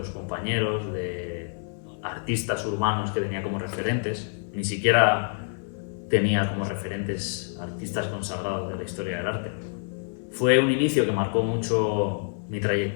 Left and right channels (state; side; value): silent; right; 60 dB below the other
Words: compañeros, de artistas urbanos que tenía como referentes. Ni siquiera tenía como referentes artistas consagrados de la historia del arte. Fue un inicio que marcó mucho mi